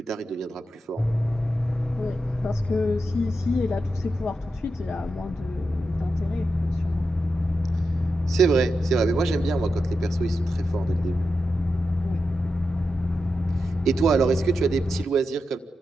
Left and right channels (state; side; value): normal; both; correlation 0.88